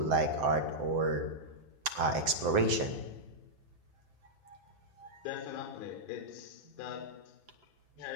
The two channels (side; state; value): left; late; 7.8 ms